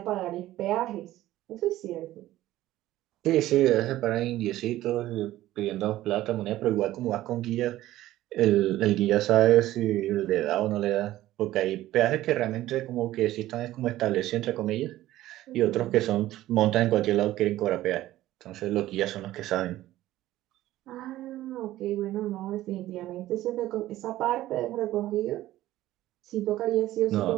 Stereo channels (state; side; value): quieter; left; 15.1 dB